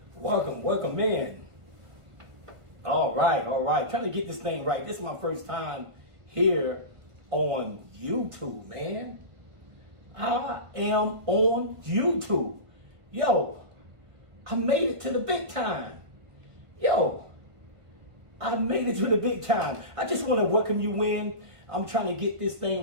Welcome in. All right. Trying to get this thing right. This is my first time here on YouTube, man. I am on YouTube. Yo, I made it to the big time. I made it to the big time. I just want to welcome you in. I'm trying to get this thing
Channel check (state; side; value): late; left; 1.6 ms